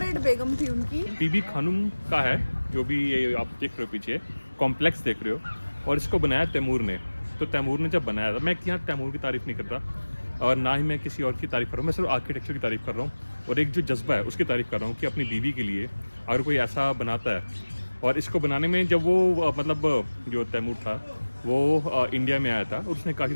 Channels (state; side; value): inverted; both; correlation -1.00